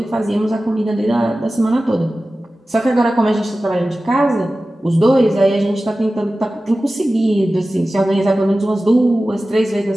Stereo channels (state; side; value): normal; both; correlation 0.95